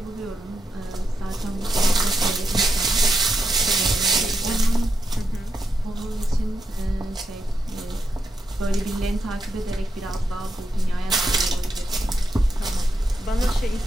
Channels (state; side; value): normal; both; correlation 0.84